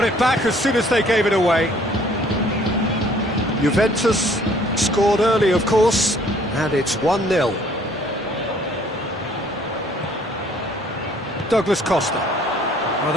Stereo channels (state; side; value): normal; both; correlation 0.59